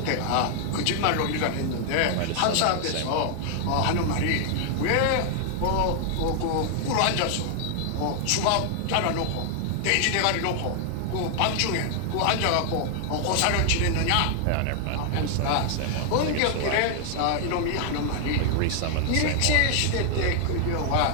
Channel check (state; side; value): different; both; correlation 0.00